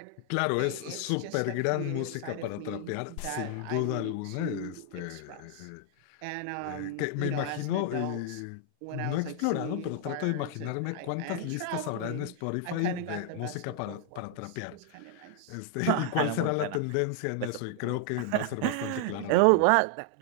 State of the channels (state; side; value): different; both; correlation 0.00